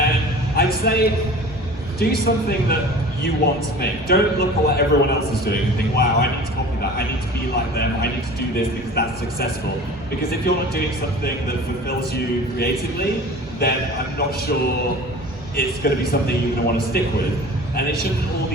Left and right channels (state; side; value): normal; both; correlation 0.41